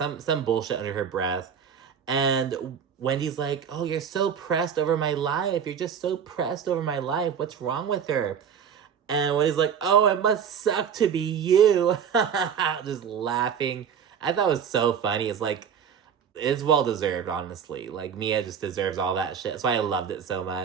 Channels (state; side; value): quieter; left; 7.5 dB